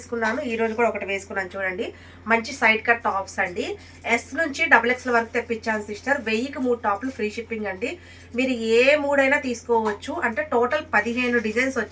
ఈ రోజు కూడా ఒకటి వేసుకున్నాను. చూడండి, మంచి సైడ్ కట్ టాప్స్ అండి. ఎస్ నుంచి డబుల్ ఎక్స్ఎల్ వరకు తెప్పించాను సిస్టర్. 1000కి 3 టాప్లు ఫ్రీ షిప్పింగ్ అండి. మీరు ఏ మూడైనా తీసుకోవచ్చు. అంటే టోటల్ 15 డిజైన్స్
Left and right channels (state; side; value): identical; both; correlation 1.00